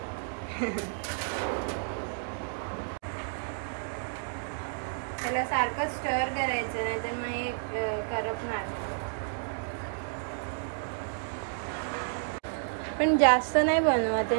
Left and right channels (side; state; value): left; silent; digital silence